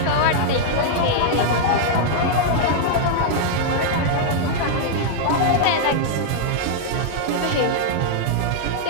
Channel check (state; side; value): different; both; correlation -0.01